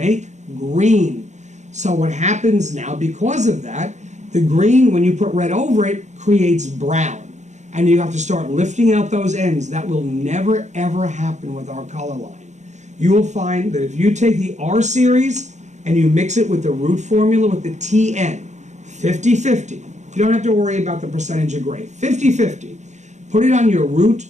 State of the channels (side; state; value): left; late; 0.34 ms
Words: Green. So what happens now, because of that, the green, when you put red over it, creates brown. And you have to start lifting out those ends. That will never, ever happen with our color line. You will find that if you take the R series and you mix it with the root formula with the TN, 50-50. You don't have to worry about the percentage of gray. 50-50. Put it on your root